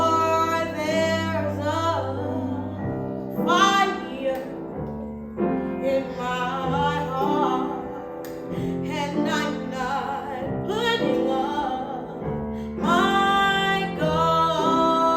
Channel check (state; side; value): identical; both; correlation 1.00